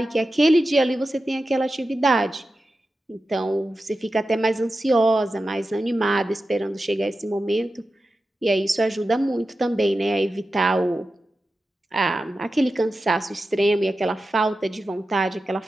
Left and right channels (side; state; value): both; normal; correlation 0.92